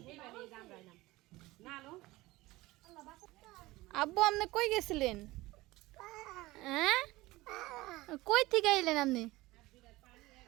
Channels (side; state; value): left; quieter; 19.4 dB